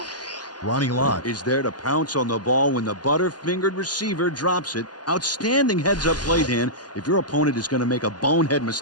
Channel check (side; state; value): right; late; 0.70 ms